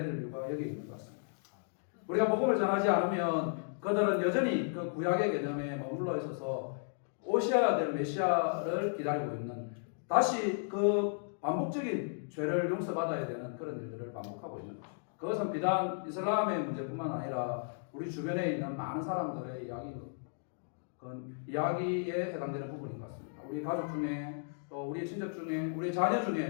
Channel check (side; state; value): right; silent; digital silence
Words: 될 이유가 여기 있는 것 같습니다. 우리가 복음을 전하지 않으면 그들은 여전히 그 구약의 개념에 머물러 있어서 오셔야 될 메시아를 기다리고 있는 다시 그 반복적인 죄를 용서받아야 되는 그런 일들을 반복하고 있는 거죠. 그것은 비단 이슬람의 문제뿐만 아니라 우리 주변에 있는 많은 사람들의 이야기에 해당되는 부분인 것 같습니다. 우리 가족 중에 또 우리 친척 중에 우리 자녀